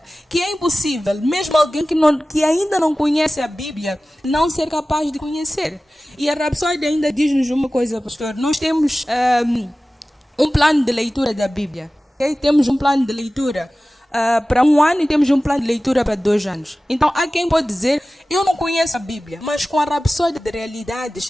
que é impossível, mesmo alguém que ainda não conhece a Bíblia, não ser capaz de conhecer. E a Rapsódia ainda diz-nos uma coisa, pastor. Nós temos um plano de leitura da Bíblia. Okay? Temos um plano de leitura para 1 ano e temos um plano de leitura para 2 anos. Então, há quem pode dizer, eu não conheço a Bíblia, mas com a Rapsódia de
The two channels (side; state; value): both; normal; correlation 0.97